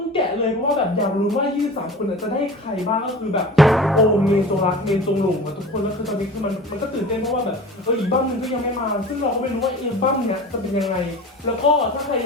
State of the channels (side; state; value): both; normal; correlation 0.37